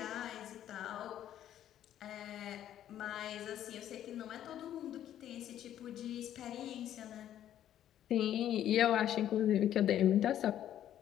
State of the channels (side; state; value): right; quieter; 11.3 dB